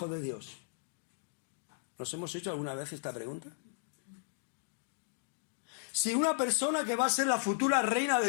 de Dios? ¿Nos hemos hecho alguna vez esta pregunta? Si una persona que va a ser la futura reina de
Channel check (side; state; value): right; silent; digital silence